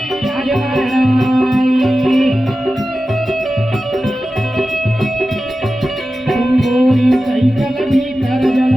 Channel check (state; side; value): normal; both; correlation 0.94